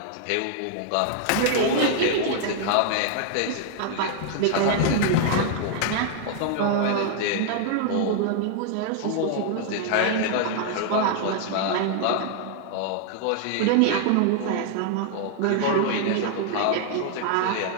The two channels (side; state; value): both; different; correlation 0.00